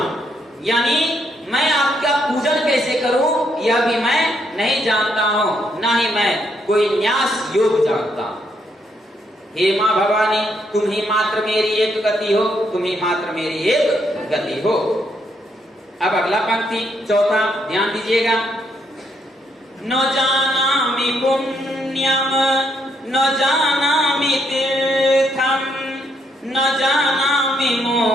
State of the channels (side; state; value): both; normal; correlation 0.75